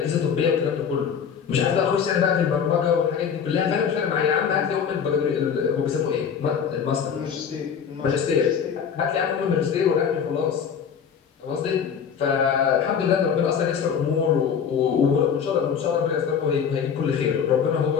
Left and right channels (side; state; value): right; quieter; 7.2 dB